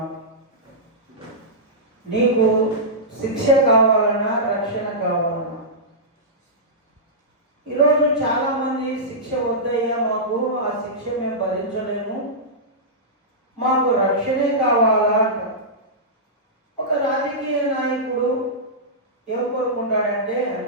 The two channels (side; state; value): both; normal; correlation -0.14